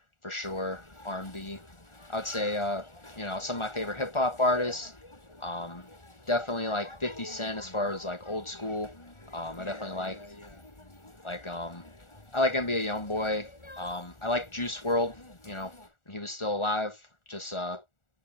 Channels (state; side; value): late; right; 1.4 ms